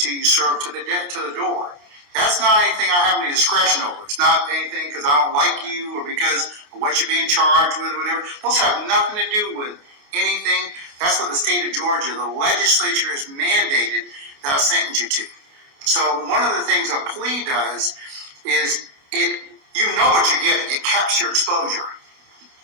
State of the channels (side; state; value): left; late; 28 ms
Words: you serve to the door. That's not anything I have any discretion over. It's not anything because I don't like you or because of what you're being charged with or whatever. Those have nothing to do with anything. That's what the state of Georgia, the legislature has mandated that I sentence you to. So one of the things a plea does is you know what you're getting. It caps your exposure.